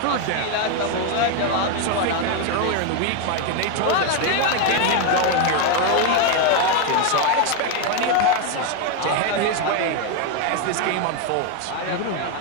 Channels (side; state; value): both; different; correlation 0.01